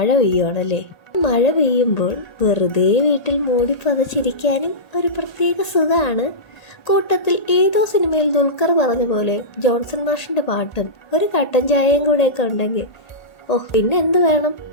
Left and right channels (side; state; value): right; late; 1.8 ms